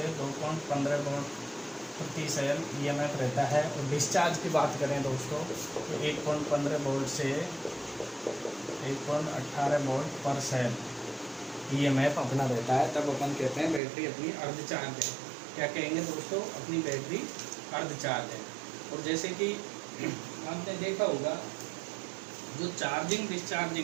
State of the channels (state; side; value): drops out; left; at 13.8 s